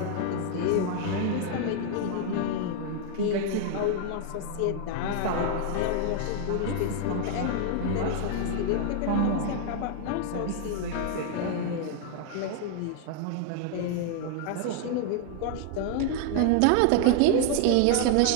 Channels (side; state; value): both; different; correlation 0.00